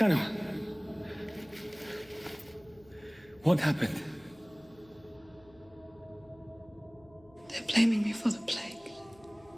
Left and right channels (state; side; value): noise; left; hum, 26 dB below the sound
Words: What happened? They're blaming me for the plague.